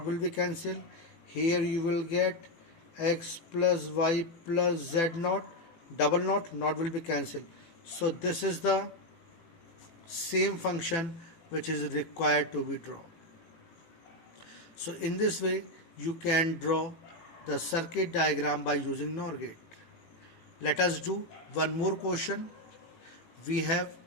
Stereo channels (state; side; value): late; right; 18 ms